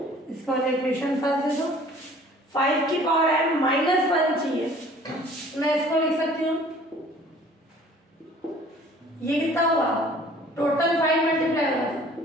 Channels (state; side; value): normal; both; correlation 0.52